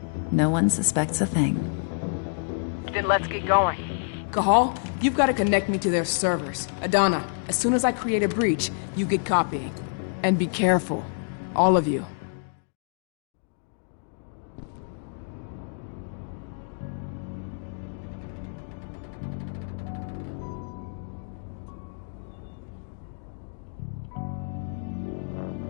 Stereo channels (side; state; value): right; silent; digital silence